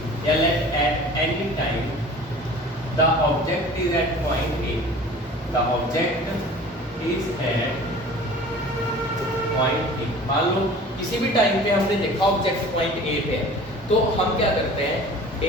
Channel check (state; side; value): normal; both; correlation 0.43